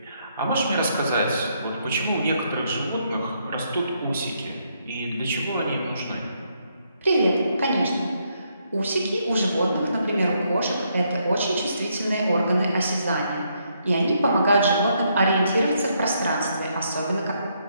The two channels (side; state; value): both; inverted; correlation -0.75